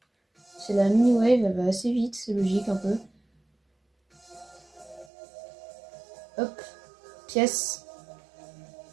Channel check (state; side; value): drops out; left; at 5.1 s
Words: C'est la mini wave, elle va assez vite, c'est logique un peu. Hop, pièce.